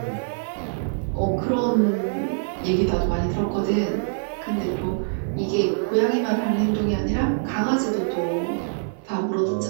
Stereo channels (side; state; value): left; silent; 55 dB below the other